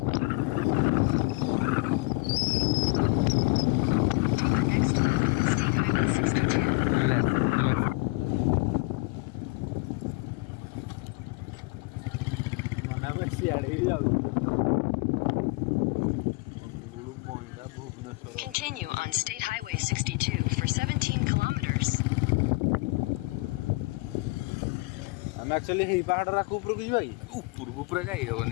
Take the next left onto State Highway 62. Left. Continue on State Highway 62 for 17 kilometers. ଆମେ ଆକ୍ଚୁଆଲି ହେଇ ପାହାଡ଼ର ଆକୁ ଉପରକୁ ଯିବା କି? ଉପରକୁ ପୁରା ଯାଇ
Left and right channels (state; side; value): quieter; right; 25.8 dB